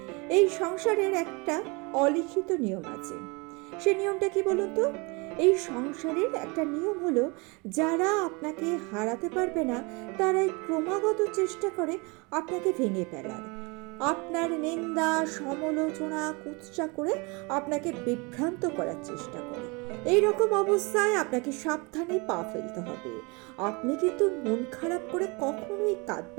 এই সংসারের একটা অলিখিত নিয়ম আছে। সে নিয়মটা কি বলুন তো? এই সংসারের একটা নিয়ম হলো, যারা আপনাকে হারাতে পারবে না তারাই ক্রমাগত চেষ্টা করে আপনাকে ভেঙে ফেলার, আপনার নিন্দা সমালোচনা কুৎসা করে আপনাকে বিভ্রান্ত করার চেষ্টা করে। এই রকম অবস্থায় আপনাকে সাবধানে পা ফেলতে হবে। আপনি কিন্তু মন খারাপ করে কখনোই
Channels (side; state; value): left; quieter; 28.7 dB